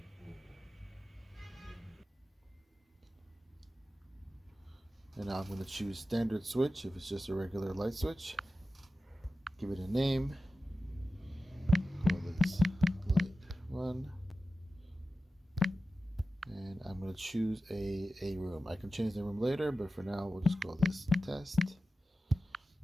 And now I'm going to choose Standard Switch if it's just a regular light switch. Give it a name. Call this Light 1. And I'm going to choose a room. I can change the room later, but for now we'll just call this Test.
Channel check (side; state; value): both; normal; correlation 0.94